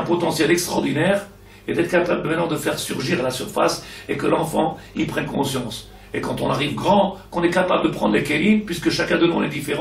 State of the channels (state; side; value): identical; both; correlation 1.00